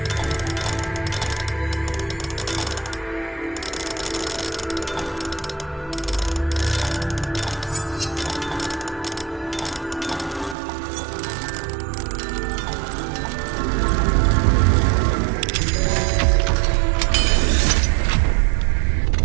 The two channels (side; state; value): left; drops out; at 10.6 s